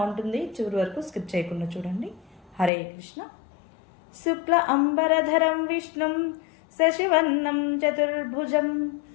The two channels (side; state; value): right; drops out; at 2.7 s